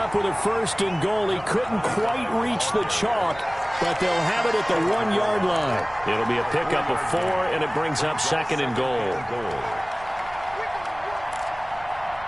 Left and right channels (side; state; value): right; noise; rumble, 20 dB below the sound